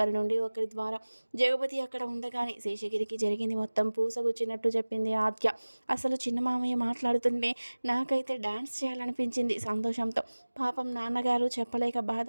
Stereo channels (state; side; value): inverted; both; correlation -1.00